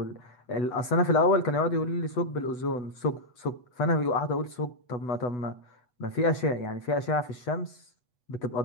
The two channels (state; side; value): late; right; 8.1 ms